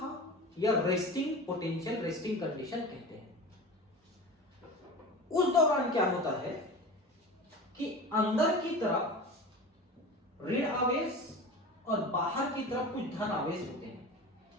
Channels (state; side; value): normal; both; correlation 0.33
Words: या रेस्टिंग पोटेंशियल, रेस्टिंग कंडीशन कहते हैं। उस दौरान क्या होता है कि अंदर की तरफ ऋण आवेश और बाहर की तरफ कुछ धन आवेश होते हैं।